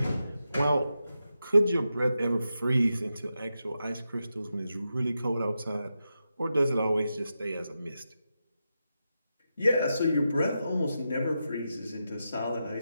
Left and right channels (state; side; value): inverted; both; correlation -0.88